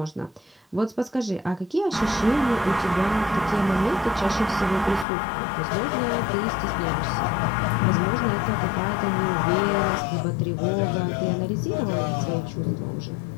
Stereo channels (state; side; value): drops out; right; at 5.1 s